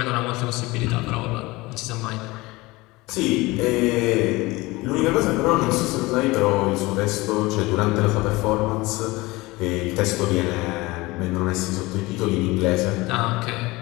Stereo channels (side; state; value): right; quieter; 21.6 dB